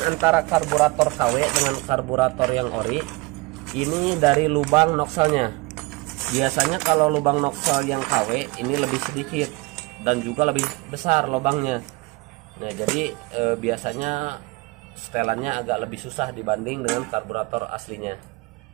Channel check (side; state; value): left; quieter; 24.6 dB